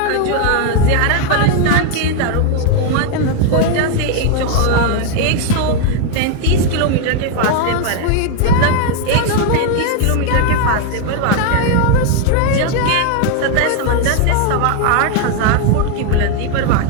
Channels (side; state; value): both; different; correlation 0.00